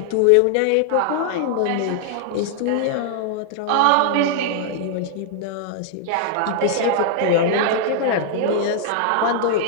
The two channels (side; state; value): both; different; correlation -0.01